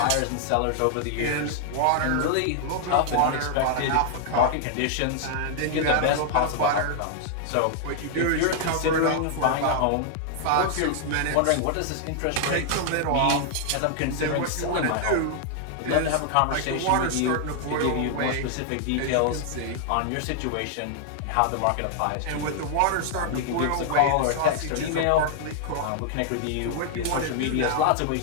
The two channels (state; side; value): different; both; correlation 0.00